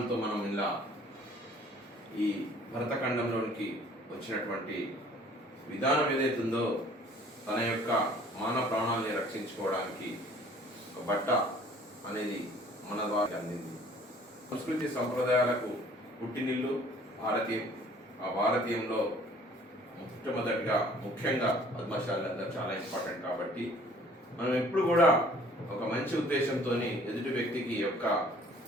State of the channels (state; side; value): normal; both; correlation 0.54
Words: మనం ఇలా ఈ భరతఖండంలోనికి వచ్చినటువంటి విధానం ఏదైతుందో తన యొక్క మానవ ప్రాణాలని రక్షించుకోవడానికి ఒక బట్ట అనేది మన ద్వారా అందింది. సంస్కృతి సంప్రదాయాలకు పుట్టినిల్లు భారతీయం. ఆ భారతీయంలో మొట్టమొదటిగా ముఖ్యంగా పద్మశాలందరూ చాలా ఇంపార్టెంట్. కాబట్టి మనం ఎప్పుడు కూడా ఒక మంచి ఉద్దేశంతో ఎదుటి వ్యక్తికి యొక్క